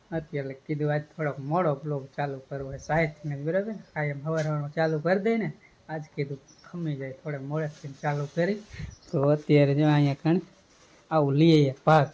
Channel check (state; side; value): identical; both; correlation 1.00